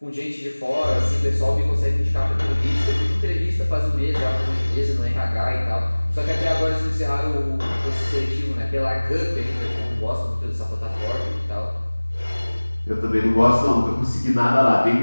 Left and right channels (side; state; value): both; inverted; correlation -1.00